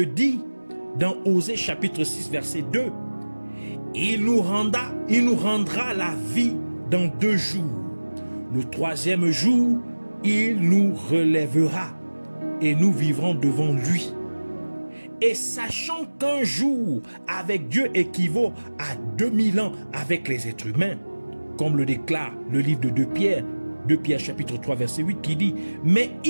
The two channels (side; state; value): both; inverted; correlation -1.00